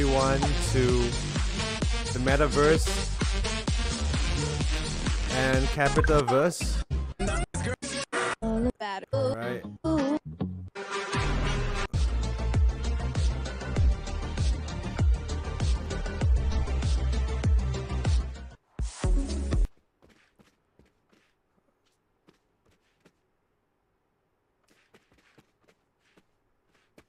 to the Metaverse and CapitaVerse. Alright.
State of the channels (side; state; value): both; identical; correlation 1.00